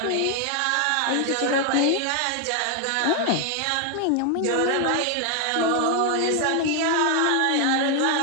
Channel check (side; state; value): both; different; correlation 0.00